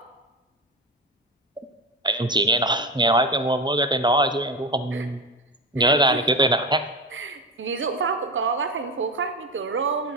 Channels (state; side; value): normal; both; correlation 0.20